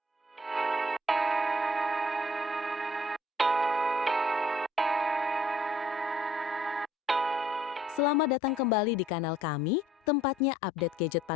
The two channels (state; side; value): normal; both; correlation 0.59